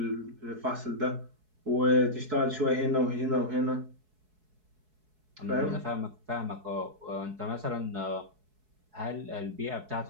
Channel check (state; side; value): late; left; 4.7 ms